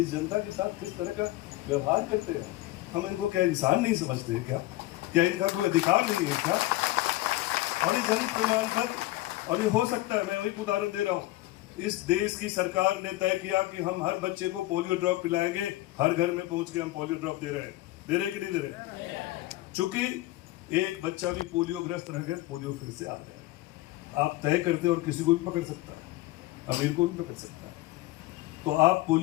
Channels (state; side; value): quieter; right; 17.9 dB